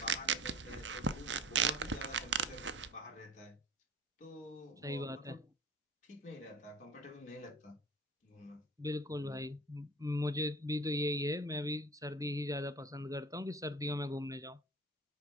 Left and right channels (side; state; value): both; normal; correlation 0.40